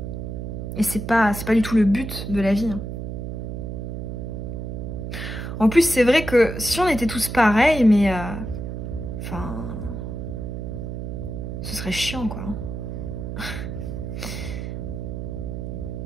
Et c'est pas du tout le but de la vie. Hein. En plus, c'est vrai que si on était tous pareils, mais... ce serait chiant, quoi.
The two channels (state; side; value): noise; right; hum, 5 dB below the sound